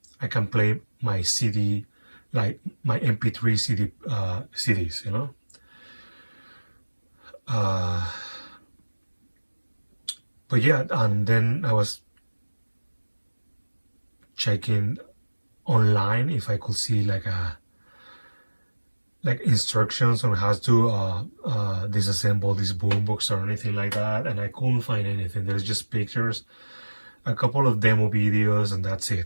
I can play my CD, like my MP3 CDs, But yeah, and then I was checking online if I could see like instructions on how to disassemble this boombox or anything like that, and I couldn't find anything. There's just pictures, a couple of demo videos, and that's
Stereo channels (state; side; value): inverted; both; correlation -1.00